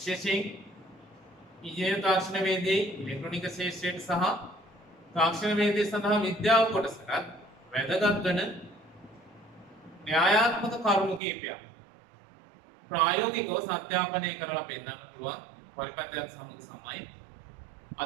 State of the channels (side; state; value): left; drops out; at 11.2 s